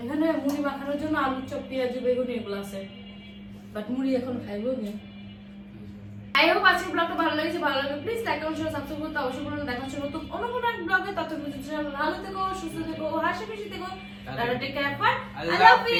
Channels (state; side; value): identical; both; correlation 1.00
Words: এখানে মুড়ি মাখানোর জন্য আলু চপ, পেঁয়াজ, বেগুন এগুলো আছে, বাট মুড়ি এখন খাইবো না। আই হোপ আজকের ব্লগটা ভালো লেগেছে। ভালো লাগলে please like comment share subscribe করতে অবশ্যই বলুন। দেখা হচ্ছে নতুন অন্য কোনো এক ব্লগে। ততক্ষণ ভালো থেকো, সুস্থ থেকো, হাসি খুশি থেকো। Tata, take care, bye. Allah Allah